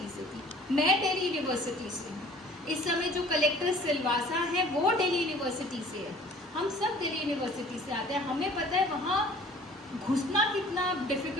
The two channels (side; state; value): both; normal; correlation 0.50